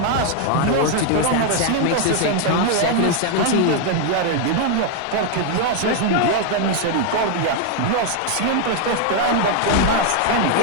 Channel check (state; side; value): different; both; correlation 0.00